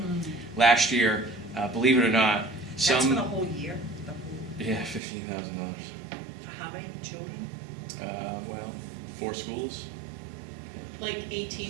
last year, believe it or not, That's for the whole year? The whole, yeah, $15,000. for how many children? Well, 4 schools. Like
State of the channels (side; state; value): left; drops out; at 5.0 s